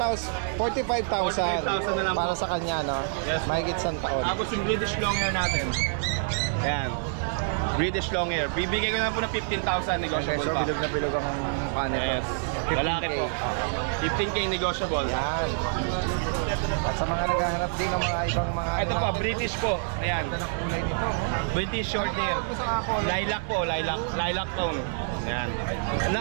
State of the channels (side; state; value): left; silent; 60 dB below the other